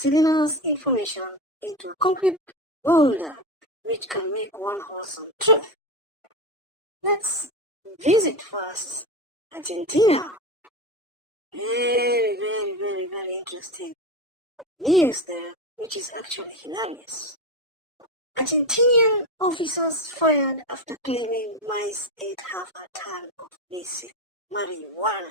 information into a complete boulder which can make one wholesome truth. Let's visit first Argentina. Very interesting news there, which is actually hilarious. Argentinian officers fired after claiming mice ate half a ton of basic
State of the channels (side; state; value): both; normal; correlation 0.19